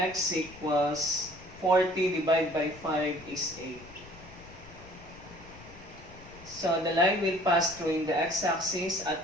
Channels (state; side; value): noise; left; rumble, 19 dB below the sound